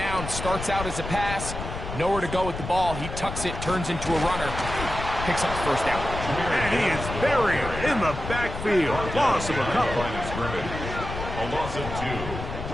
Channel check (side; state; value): left; noise; rumble, 7 dB below the sound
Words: Starts out as a pass. Nowhere to go with the ball. He tucks it, turns into a runner. Picks up the first down. And he is buried in the backfield. Loss of a couple. A loss of 2